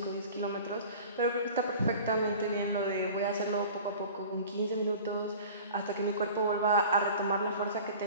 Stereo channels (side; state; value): both; inverted; correlation -0.41